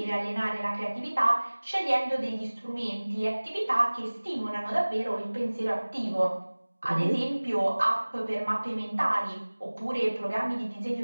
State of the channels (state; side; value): inverted; both; correlation -1.00